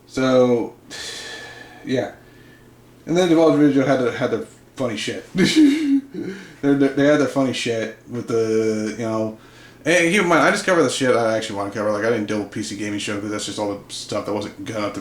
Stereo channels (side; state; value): both; identical; correlation 1.00